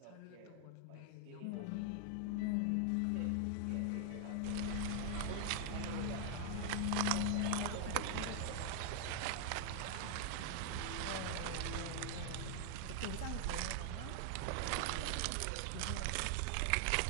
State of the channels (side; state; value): both; different; correlation 0.00